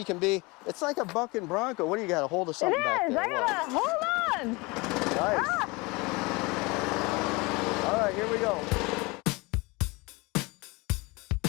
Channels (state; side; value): quieter; right; 25.4 dB